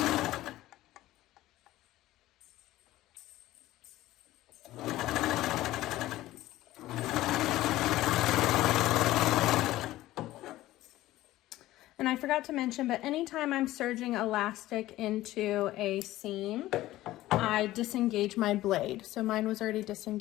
And I forgot to mention, but anytime I'm serging elastic into a seam, I disengage my blade. So mine was already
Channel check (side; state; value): right; quieter; 15.9 dB